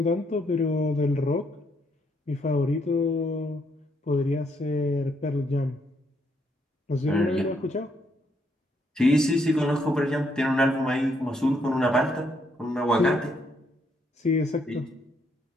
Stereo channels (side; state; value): both; normal; correlation 0.73